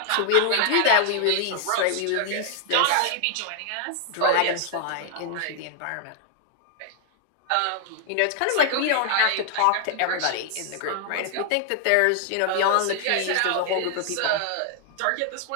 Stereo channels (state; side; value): different; both; correlation 0.00